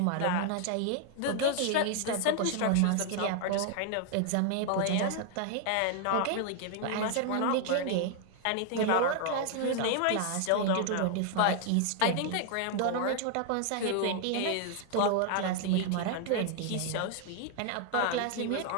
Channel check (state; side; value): different; both; correlation 0.00